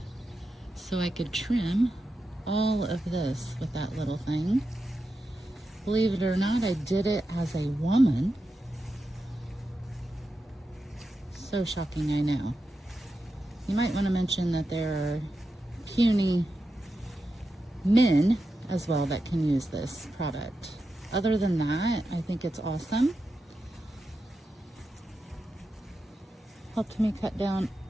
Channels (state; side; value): normal; both; correlation 0.89